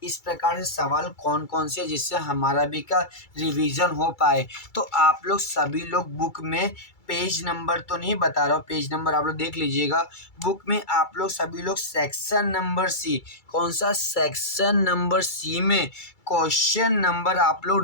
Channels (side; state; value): right; late; 2.3 ms